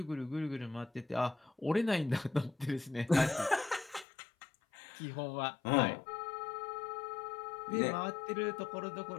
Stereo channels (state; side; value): drops out; right; at 4.0 s